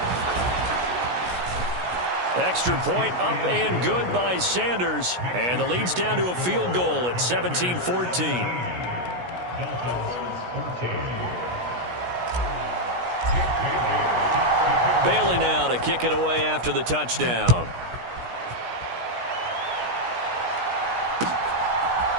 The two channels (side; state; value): left; late; 16 ms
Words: Extra point up and good by Sanders. And the lead's down to a field goal at 17-14. Bailey now to kick it away after the touchdown.